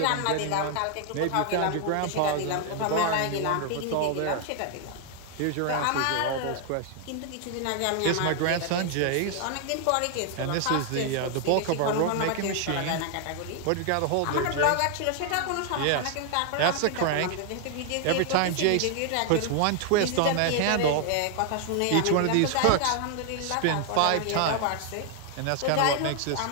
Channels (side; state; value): both; different; correlation 0.00